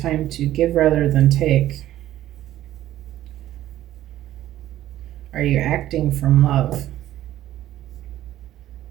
to give rather than take. Are you acting from love?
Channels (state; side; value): quieter; left; 13.5 dB